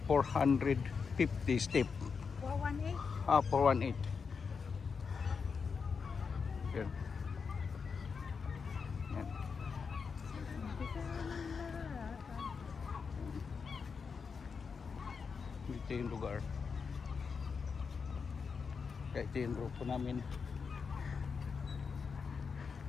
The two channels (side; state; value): right; quieter; 5.5 dB